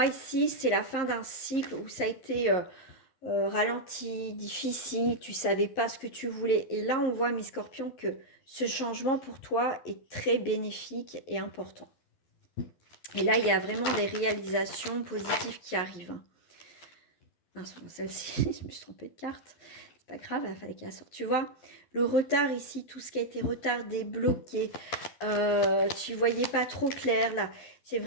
ici, c'est la fin d'un cycle où ça a été ralenti, difficile, tu ne savais pas ce que tu voulais. Et là, on voit, mes scorpions, que ce changement pour toi est très bénéfique et important. Et là, il y a vraiment des réalisations positives qui arrivent. Ah, celle-ci, je me suis trompée de carte. Pas grave, il fallait qu'elle sorte. Tu vois, le retard ici, tout ce qui a été retardé, bloqué, tu voyais pas trop clair là. C'est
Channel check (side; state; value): right; late; 12 ms